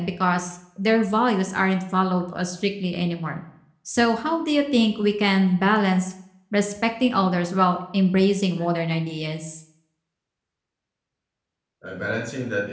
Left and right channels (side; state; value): both; identical; correlation 1.00